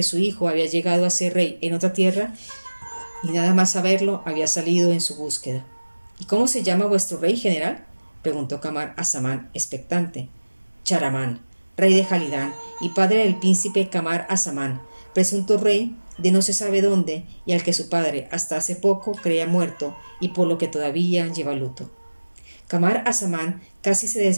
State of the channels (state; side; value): inverted; both; correlation -1.00